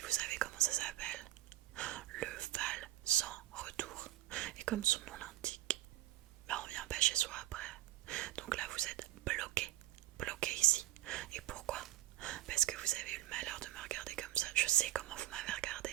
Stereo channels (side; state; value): left; quieter; 15.3 dB